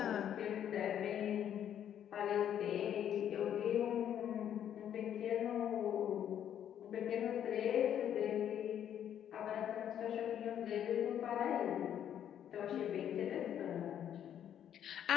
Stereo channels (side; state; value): right; quieter; 9.9 dB